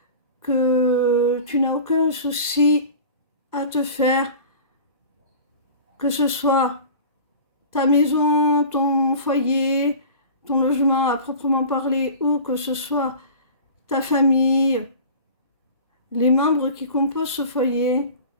que tu n'as aucun souci à te faire, que ce soit ta maison, ton foyer, ton logement à proprement parler, ou que ce soit ta famille, les membres qui composent ce foyer,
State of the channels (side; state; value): both; inverted; correlation -0.39